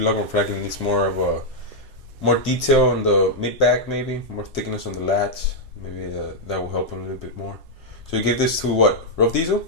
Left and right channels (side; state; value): both; normal; correlation -0.03